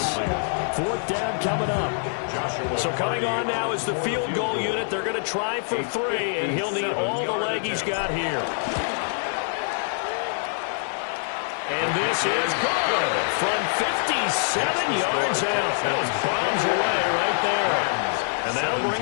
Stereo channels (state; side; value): silent; right; digital silence